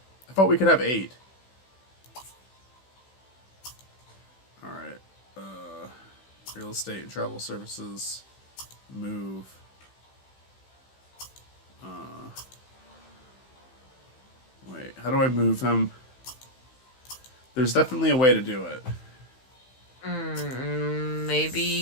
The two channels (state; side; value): late; right; 15 ms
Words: thought we could have 8. Alright. Real estate and travel services. Move. Wait, how do I move him? There's definitely a way to do it.